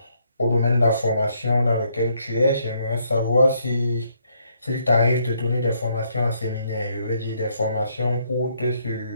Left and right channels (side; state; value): both; inverted; correlation -0.72